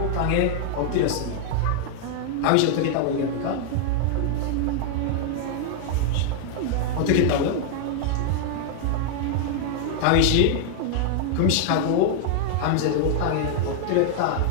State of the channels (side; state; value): both; different; correlation 0.00